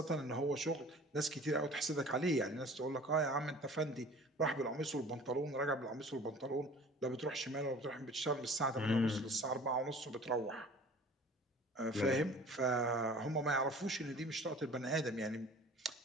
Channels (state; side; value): normal; both; correlation 0.46